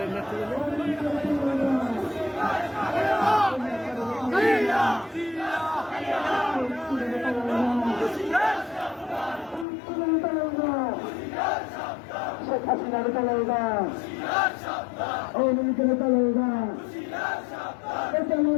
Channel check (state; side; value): drops out; right; at 9.7 s